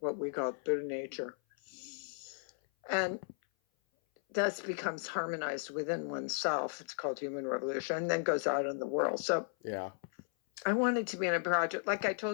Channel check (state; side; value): silent; right; 54 dB below the other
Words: we call Buddha nature, and thus becomes harmonized within oneself. It's called human revolution, and then goes out in the world. So Yeah. I wanted to be in a project, like I